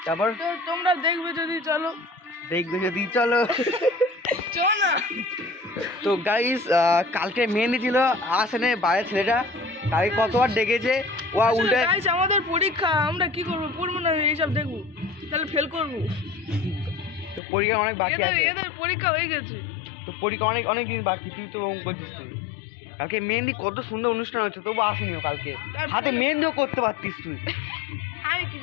তারপর তো তোমরা দেখবে যদি চলো চলো না। তো গাইস কালকে মেহেন্দি ছিল, আসেনে বাইরের ছেলেটা। তাকে কতবার ডেকেছে, ও উল্টে। গাইস আমাদের পরীক্ষা, আমরা কি করবো, পড়বো না এইসব দেখবো, তাহলে ফেল করবো। তো পরীক্ষা অনেক বাকি আছে, এদের পরীক্ষা হয়ে গেছে। তো পরীক্ষা অনেক দিন বাকি। তুই তো ওম করছিস তুই। কালকে মেহেন্দি কত সুন্দর অনুষ্ঠান হচ্ছে, তবু আসেনিও কালকে। হাতে মেহেন্দিও করতে পারতিস তুই। আমি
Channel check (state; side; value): drops out; right; at 17.4 s